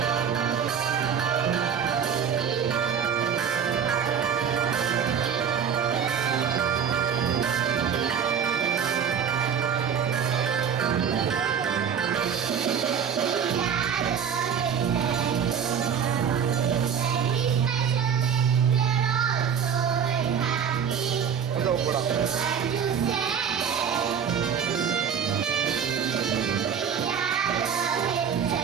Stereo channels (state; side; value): quieter; left; 7.5 dB